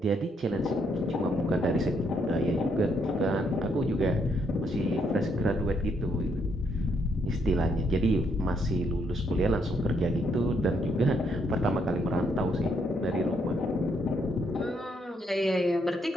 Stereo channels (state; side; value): normal; both; correlation 0.74